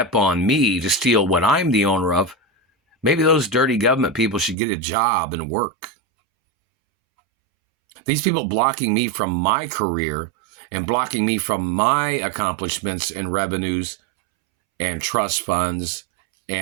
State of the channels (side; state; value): left; drops out; at 4.5 s